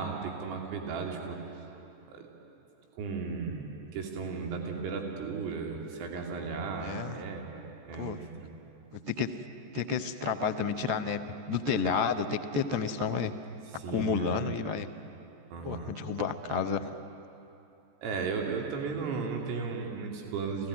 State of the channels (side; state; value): left; late; 14 ms